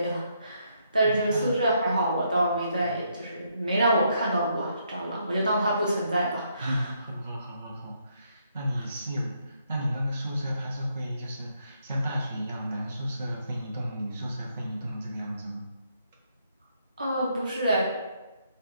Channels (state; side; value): inverted; both; correlation -0.75